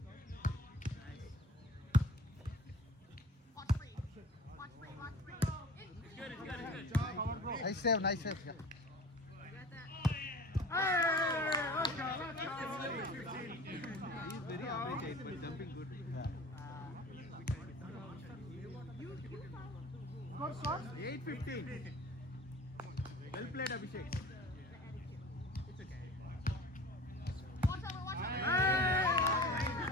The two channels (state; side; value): normal; both; correlation 0.41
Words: Nice save. He's very average height, but jumping good. 8:15. Well played. played, Abhishek. It's okay. Hey!